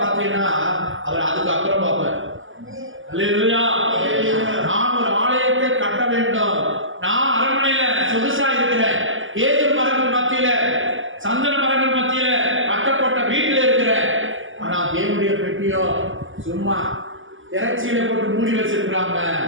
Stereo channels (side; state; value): left; late; 0.58 ms